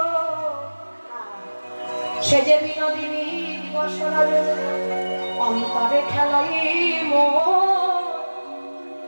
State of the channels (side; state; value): both; inverted; correlation -1.00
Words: সে যে বিনোদিনী দিবস অন্তরে খেলাই